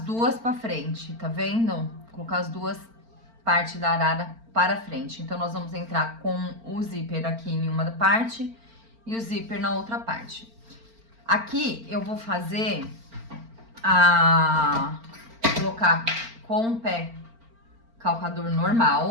duas para frente, tá vendo? Vou colocar as duas partes da arara para frente. Então, nós vamos entrar com o zíper aqui em uma parte e o zíper na outra parte. Aqui, eu vou fazer colocar com o pé calcador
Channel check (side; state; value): left; late; 4.4 ms